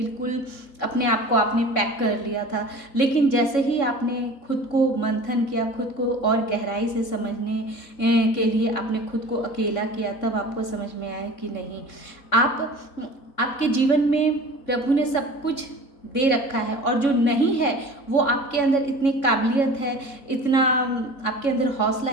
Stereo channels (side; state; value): right; late; 3.6 ms